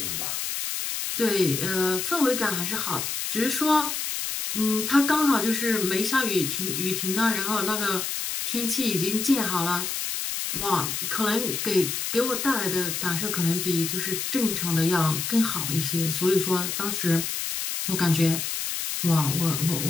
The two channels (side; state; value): left; noise; hiss, 3 dB below the sound